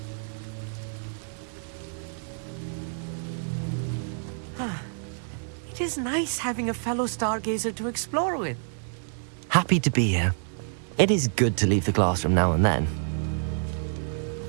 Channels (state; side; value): silent; left; digital silence